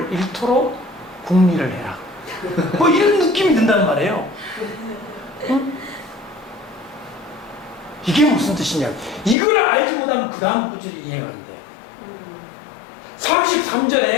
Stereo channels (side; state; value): right; drops out; at 9.3 s